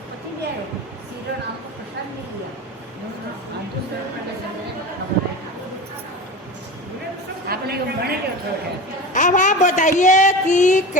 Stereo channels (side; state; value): both; normal; correlation 0.30